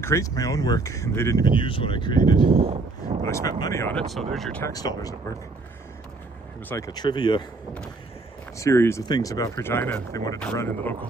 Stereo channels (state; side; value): quieter; left; 3.5 dB